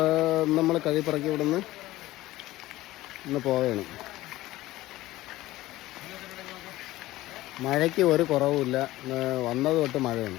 നമ്മൾ കഴിപ്പിറക്കി ഇവിടുന്ന് ഇന്ന് പോവുകയാണ്. മഴയ്ക്ക് ഒരു കുറവുമില്ല. വന്നത് തൊട്ട് മഴയാണ്.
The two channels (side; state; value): right; quieter; 16.9 dB